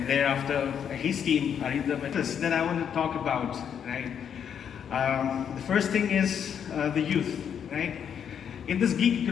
thereafter his team are in the matters that I want to talk about, right? The first thing is the youth, right? In this gig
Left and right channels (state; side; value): quieter; right; 8.2 dB